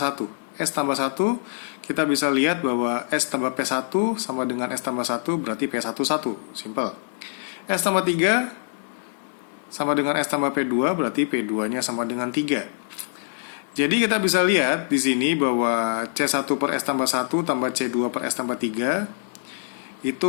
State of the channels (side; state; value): right; silent; digital silence